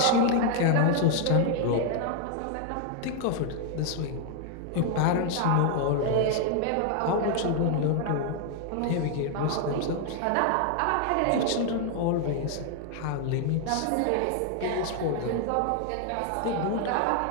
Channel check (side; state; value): both; different; correlation 0.00